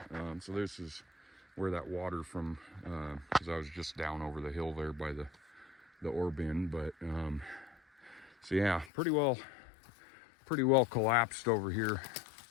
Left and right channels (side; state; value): right; drops out; at 8.9 s